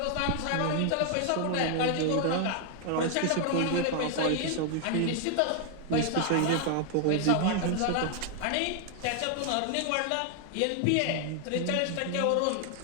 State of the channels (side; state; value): both; different; correlation 0.00